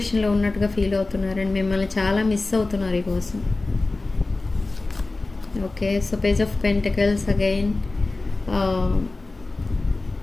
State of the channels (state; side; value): quieter; right; 3.3 dB